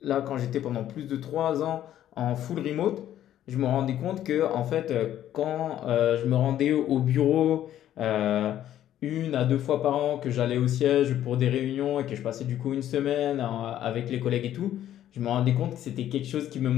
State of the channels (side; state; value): right; quieter; 11.8 dB